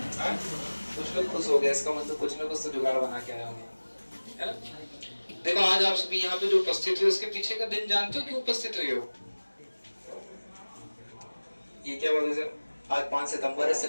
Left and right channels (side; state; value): both; inverted; correlation -1.00